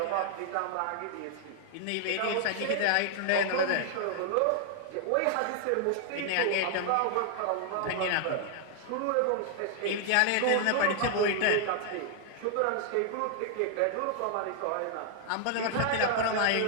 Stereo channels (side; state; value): both; different; correlation 0.00